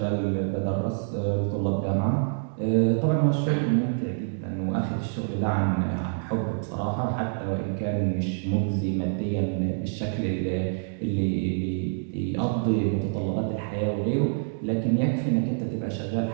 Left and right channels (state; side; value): silent; left; digital silence